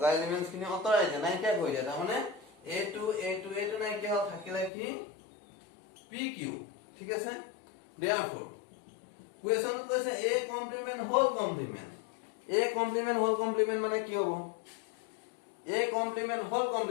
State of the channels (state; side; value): drops out; right; at 4.7 s